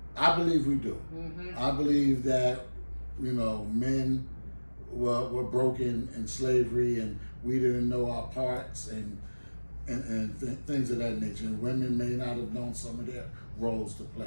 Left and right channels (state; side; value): inverted; both; correlation -1.00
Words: I believe we do. I believe that, you know, men were broken in slavery and we didn't know our parts and things of that nature. And women may not have known some of their roles to